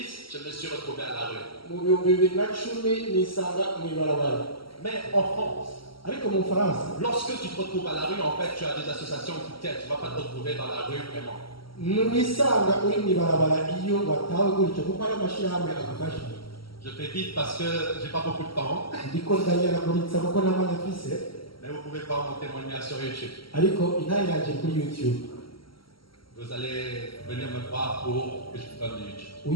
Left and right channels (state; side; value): late; right; 0.74 ms